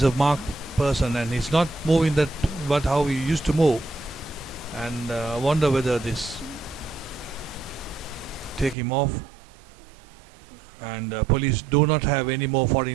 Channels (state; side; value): drops out; left; at 8.8 s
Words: a marked person, and he's not moving that, but how he used to move. And I wonder whether this take him off. And Police do not have any more